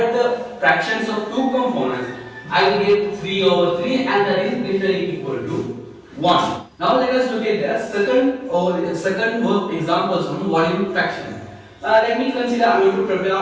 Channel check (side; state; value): both; identical; correlation 1.00